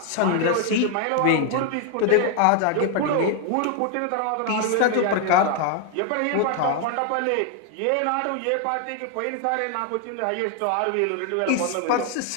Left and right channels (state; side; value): different; both; correlation 0.00